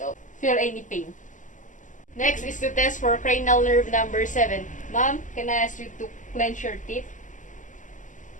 feel any pain. Next is to test for cranial nerve number 7. Ma'am, can I ask you to clench your teeth?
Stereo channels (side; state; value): right; late; 0.37 ms